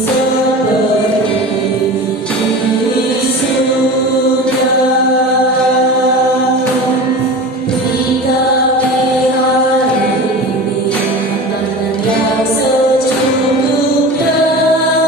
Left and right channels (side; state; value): both; normal; correlation 0.32